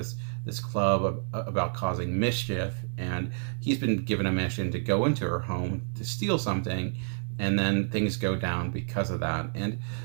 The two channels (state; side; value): silent; left; digital silence